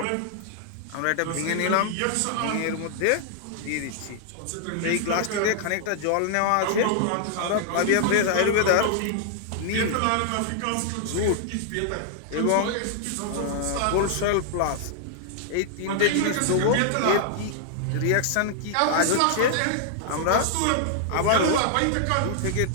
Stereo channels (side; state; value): both; different; correlation -0.01